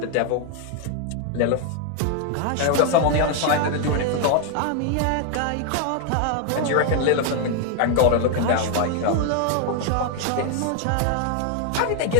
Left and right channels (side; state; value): both; different; correlation 0.01